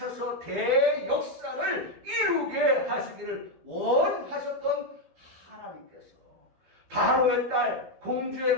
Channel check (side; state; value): left; late; 12 ms